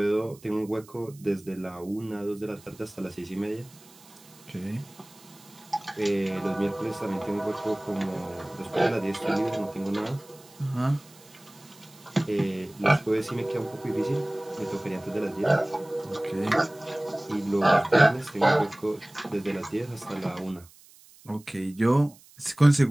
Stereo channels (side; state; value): right; noise; hiss, 24 dB below the sound